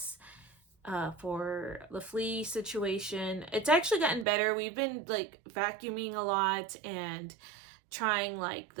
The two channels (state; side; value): drops out; left; at 4.2 s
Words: for the flea situation. It's actually gotten better. We've been like vacuuming a lot and trying like